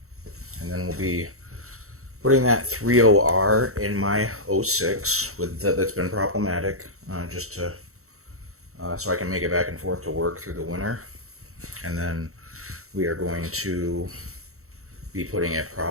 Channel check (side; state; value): left; late; 0.64 ms